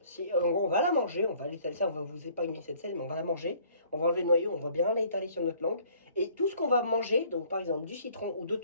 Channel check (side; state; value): both; inverted; correlation -0.57